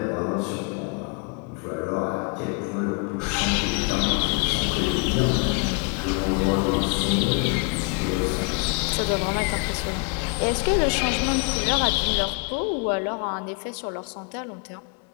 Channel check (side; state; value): right; quieter; 35.1 dB